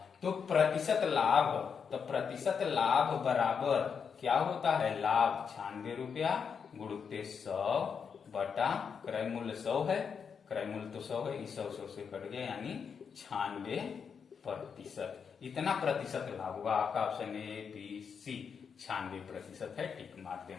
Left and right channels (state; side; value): quieter; right; 6.5 dB